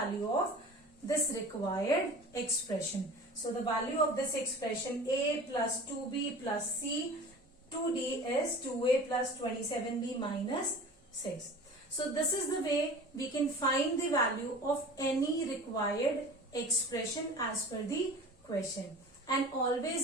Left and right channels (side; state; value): both; normal; correlation 0.40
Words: of this required expression. So the value of this expression, a plus 2b plus c, 2d is 2a plus 27b minus 6. So this is the way we can find the value of any required expression as per the question. And